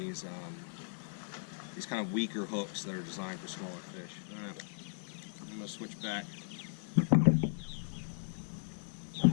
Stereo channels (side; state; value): right; silent; digital silence